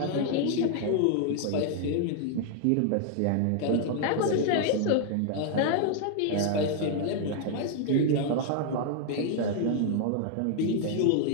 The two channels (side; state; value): both; different; correlation 0.00